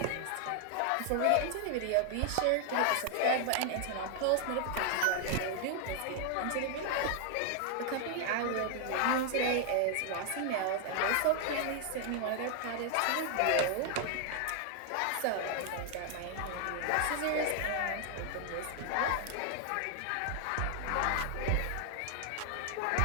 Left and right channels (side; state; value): both; different; correlation 0.00